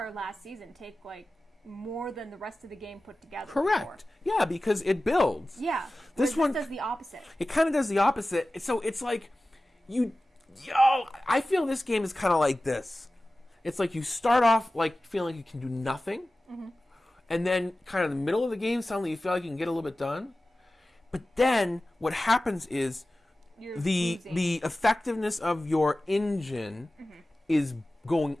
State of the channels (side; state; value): both; normal; correlation 0.96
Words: last season take more than the rest of the game put together. Correct. Before. Yeah, because it builds. Yeah. This one does the opposite. It kind of does the opposite. So it's like I feel this game is kind of like this. It's like you start off like feeling like you can do nothing, and then kind of in the middle of the game, suddenly you feel like you can get a little bit done. But then what happens is the effectiveness of your engine is going